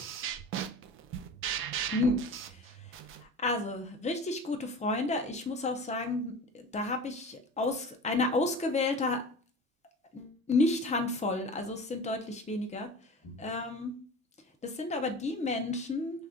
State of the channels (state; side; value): normal; both; correlation 0.35